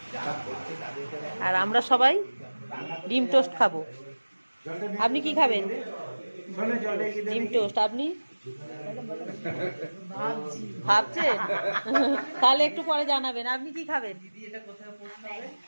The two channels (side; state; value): both; inverted; correlation -1.00